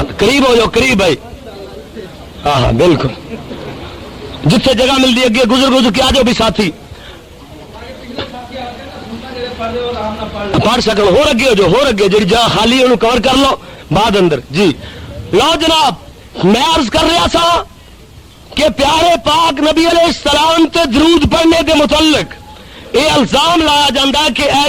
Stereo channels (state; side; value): identical; both; correlation 1.00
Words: قریب ہو جاؤ، قریب بھائی، ہاں ہاں بالکل، جتنے جگہ ملتی اگے گزر کے آ جاؤ بھی ساتھی پڑھ سکو، ہو اگے ہو جاؤ، ہو اگے جی جگہ خالی انہوں کور کر لو بعد اندر جی۔ لو جناب میں عرض کر رہا تھا کہ پیارے پاک نبی علیہ السلام تے درود پڑھنے کے متعلق یہ الزام لایا جاتا ہے کہ